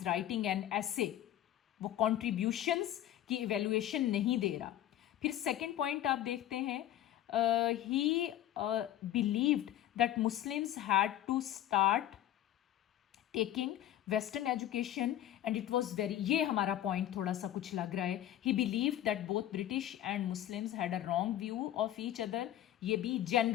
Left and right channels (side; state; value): right; quieter; 12.6 dB